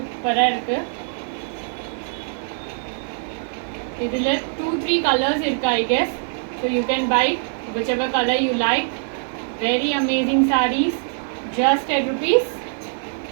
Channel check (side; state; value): left; silent; 64 dB below the other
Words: இருக்கு. இதில் 2-3 கலர்ஸ் இருக்கு I guess. So you can buy whichever color you like. Very amazing sarees, just at rupees